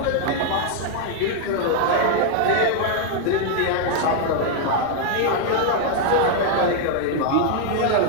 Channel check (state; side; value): different; both; correlation 0.00